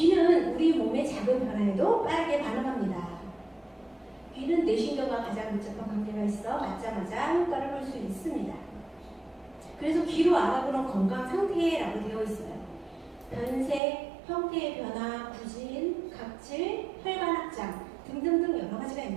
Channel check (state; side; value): drops out; left; at 13.8 s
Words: 우리 몸의 작은 변화에도 빠르게 반응합니다. 귀는 뇌신경과 가장 밀접한 관계가 있어 맞자마자 효과를 볼 수 있습니다. 그래서 귀로 알아보는 건강 상태라고 되어 있어요. 변색, 형태의 변화, 부진, 각질, 혈관 확장 등등등 여러 가지가